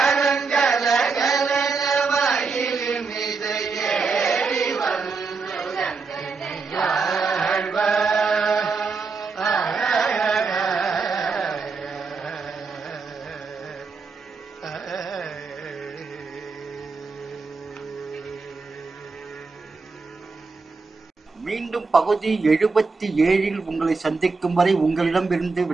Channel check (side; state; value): left; quieter; 4.5 dB